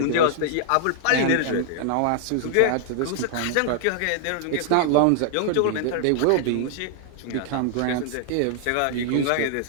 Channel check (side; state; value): both; different; correlation -0.01